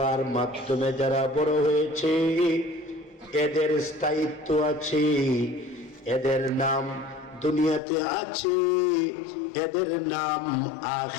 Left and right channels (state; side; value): drops out; right; at 7.8 s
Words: মাধ্যমে যারা বড় হয়েছে এদের স্থায়িত্ব আছে, এদের নাম দুনিয়াতে আছে, এদের নাম